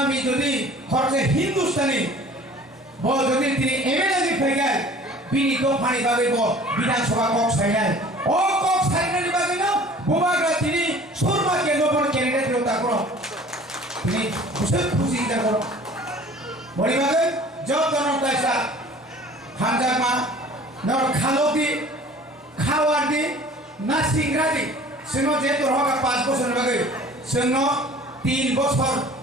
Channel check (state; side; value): normal; both; correlation 0.48